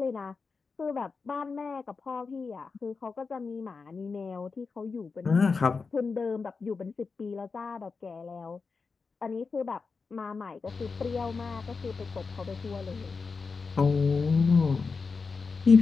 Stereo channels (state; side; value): quieter; right; 4.7 dB